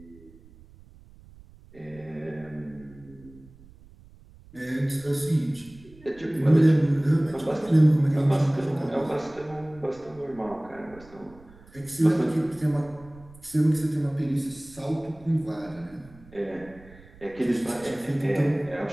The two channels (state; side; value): noise; right; rumble, 23 dB below the sound